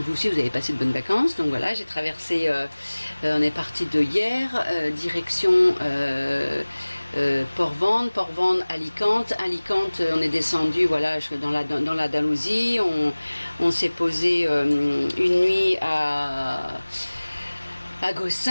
aussi vous avez passé de bonnes vacances. Donc voilà, j'ai traversé, on est parti de hier, direction Port-Vendre, Alicante. Alicante, on est descendu voilà, dans l'Andalousie. On s'est posé une nuit à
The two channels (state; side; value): inverted; both; correlation -1.00